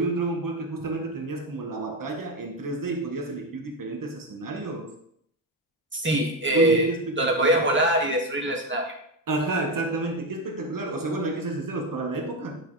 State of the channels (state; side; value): normal; both; correlation 0.12